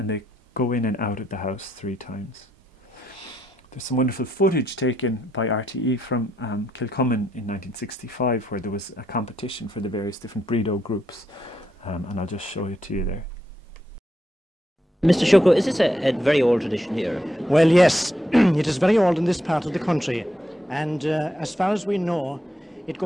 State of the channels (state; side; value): normal; both; correlation 0.80